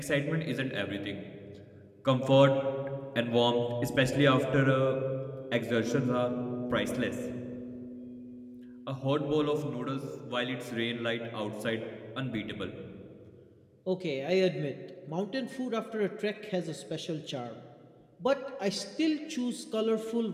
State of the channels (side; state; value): both; identical; correlation 1.00